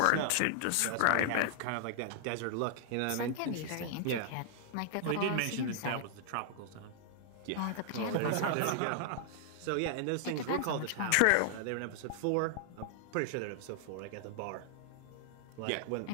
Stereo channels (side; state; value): both; different; correlation 0.00